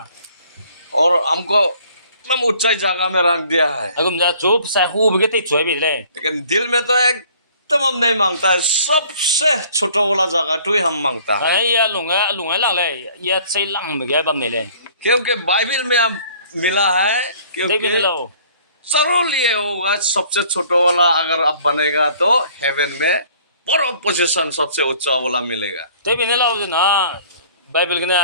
और हमको एकदम ऊंचाई जगह में रख दिया है। agum ja chu sa hu bi ge te choi bi lai लेकिन दिल में तो एकदम हम नहीं मांगता है, सबसे छोटा वाला जगह तो ही हम मांगता है। ai ya lunga lang lai ya chei lang ba ge bam ne lai क्योंकि बाइबल में हम मिला है, dei bi क्योंकि lo जरूर ये होगा सबसे छोटा वाला अगर अब बनेगा तो हेवन में बड़ा पोजीशन सबसे ऊंचा वाला मिलेगा। dei bi ne lo na bible ge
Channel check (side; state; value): both; inverted; correlation -0.55